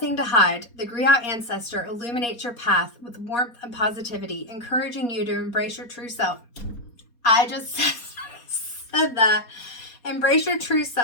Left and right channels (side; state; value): right; late; 4.2 ms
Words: to hide. The griot ancestor illuminates your path with warmth and positivity, encouraging you to embrace your true self. I just said that. Embrace your true